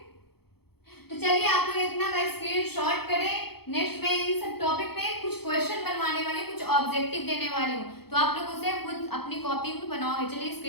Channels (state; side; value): late; right; 0.96 ms